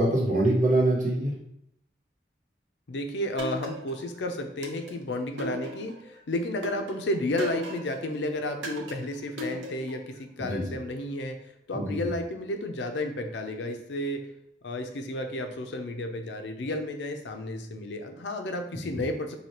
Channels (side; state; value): both; normal; correlation 0.48